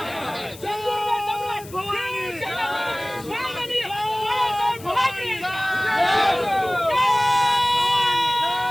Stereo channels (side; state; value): left; noise; hiss, 19 dB below the sound